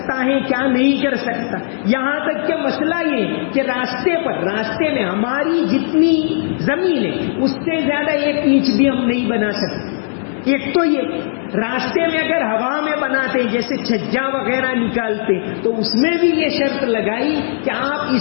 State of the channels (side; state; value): right; silent; digital silence